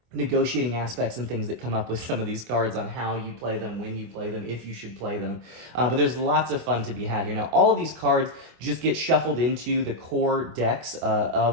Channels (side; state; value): left; late; 25 ms